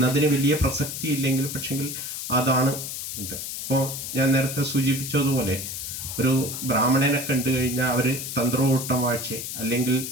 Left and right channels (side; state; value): left; noise; hiss, 6 dB below the sound